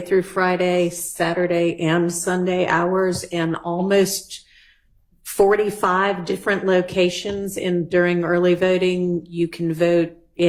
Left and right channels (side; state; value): both; identical; correlation 1.00